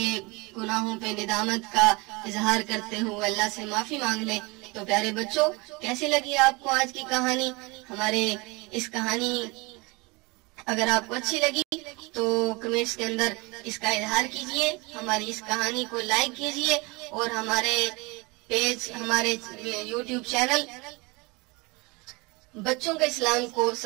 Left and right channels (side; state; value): left; quieter; 26.0 dB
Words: गुनाहों पे निदामत का इजहार करते हुए अल्लाह से माफी मांग लें। तो प्यारे बच्चों, कैसी लगी आपको आज की कहानी? हमारे इस कहानी अगर आपको अच्छी लगी तो कमेंट्स के अंदर इसका इजहार कीजिए, हमारी इस कहानी को लाइक कीजिए और हमारे पेज, हमारे यूट्यूब चैनल बच्चों का इस्लाम को